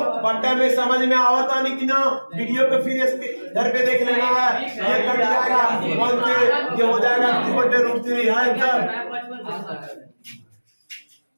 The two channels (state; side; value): inverted; both; correlation -1.00